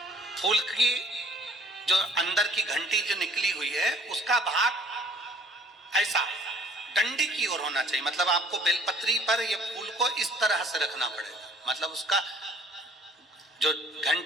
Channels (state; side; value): normal; both; correlation 0.55